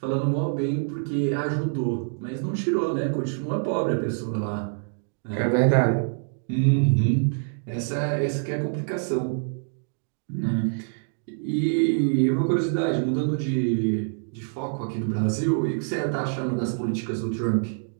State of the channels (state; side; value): silent; left; digital silence